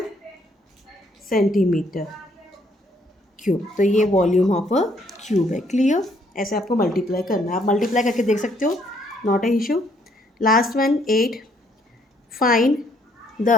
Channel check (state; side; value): normal; both; correlation 0.68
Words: सेंटीमीटर क्यूब. तो ये वॉल्यूम ऑफ अ क्यूब है. क्लियर? ऐसे आपको मल्टीप्लाई करना है. आप मल्टीप्लाई करके देख सकते हो, not a issue. Last one 8. Find